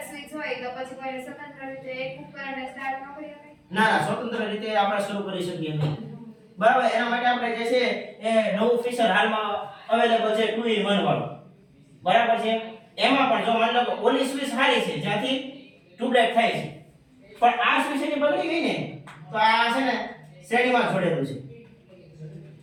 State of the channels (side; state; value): both; identical; correlation 1.00